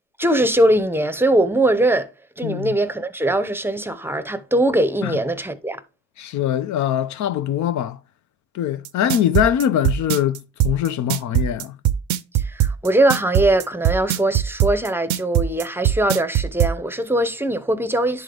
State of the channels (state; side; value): normal; both; correlation 0.48